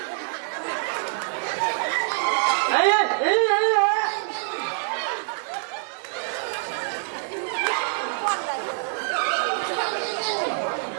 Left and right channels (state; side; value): silent; left; 62 dB below the other